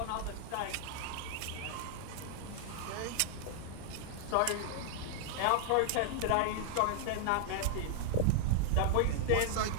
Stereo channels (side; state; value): both; different; correlation 0.00